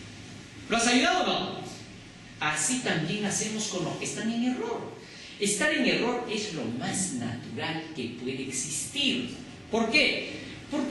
¿Lo has ayudado o no? Así también hacemos con los que están en error. Estar en error es lo más natural que puede existir. ¿Por qué?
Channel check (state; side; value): identical; both; correlation 1.00